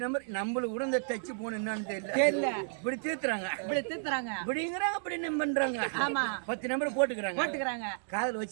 நம்பர் நம்மளுக்கு கூட இந்த டச்சு போன என்னன்னு தெரியல தெரியல இப்படி தீர்த்துறாங்க இப்படி தீத்துறாங்க இப்படிங்கிறாங்க அப்படி என்ன பண்றாங்க ஆமா 10 நம்பர் போட்டுக்கிறாங்க போட்டுக்கிறாங்க காதுல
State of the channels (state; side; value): silent; left; digital silence